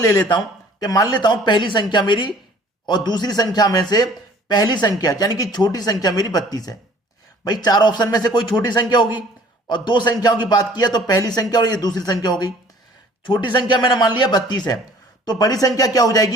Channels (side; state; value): both; normal; correlation 0.53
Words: लेता हूं कि मान लेता हूं पहली संख्या मेरी और दूसरी संख्या में से पहली संख्या यानी कि छोटी संख्या मेरी 32 है। भाई चार ऑप्शन में से कोई छोटी संख्या होगी, और दो संख्याओं की बात किया तो पहली संख्या और ये दूसरी संख्या हो गई। छोटी संख्या मैंने मान लिया 32 है, तो बड़ी संख्या क्या हो